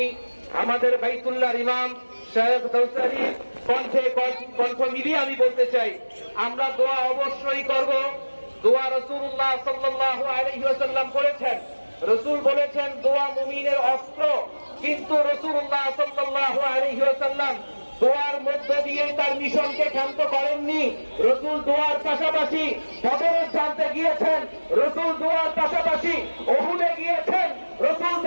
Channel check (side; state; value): both; inverted; correlation -1.00